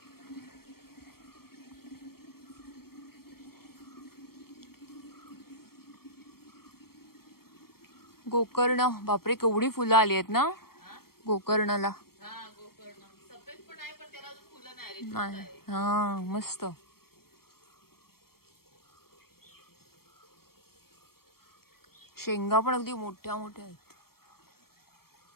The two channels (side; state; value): right; late; 0.94 ms